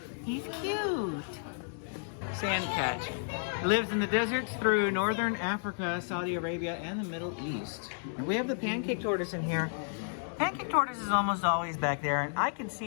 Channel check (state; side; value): silent; right; digital silence